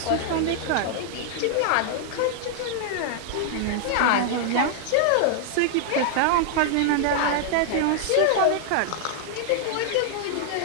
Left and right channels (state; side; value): different; both; correlation -0.01